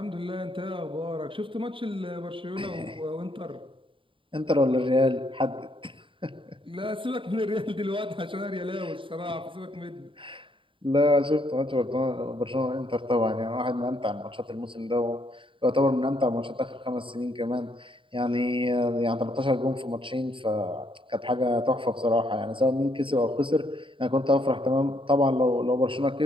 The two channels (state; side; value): late; left; 0.25 ms